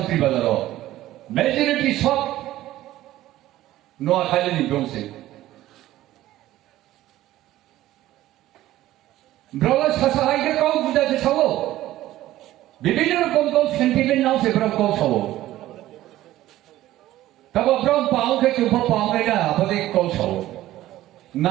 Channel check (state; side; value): quieter; left; 14.9 dB